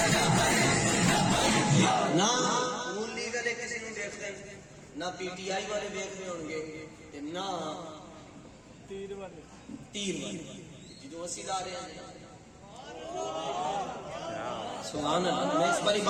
نہ نون لیگ والے کسی نے دیکھتے ہیں نہ پی ٹی آئی والے دیکھ رہے ہوں گے نہ تیر والے جدو اسی لا رہے ہیں سبحان اللہ میں اس بار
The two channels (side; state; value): both; identical; correlation 1.00